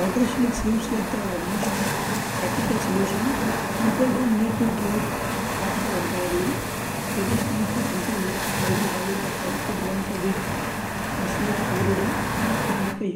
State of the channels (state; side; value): identical; both; correlation 1.00